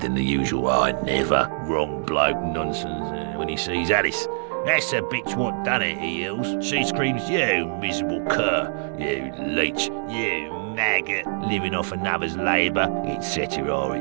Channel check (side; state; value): left; silent; digital silence